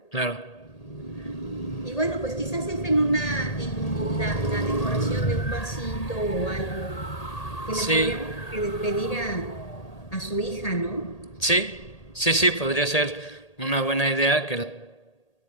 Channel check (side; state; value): right; late; 1.8 ms